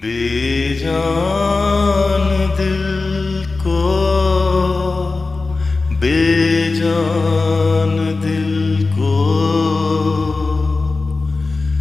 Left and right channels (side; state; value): right; quieter; 3.7 dB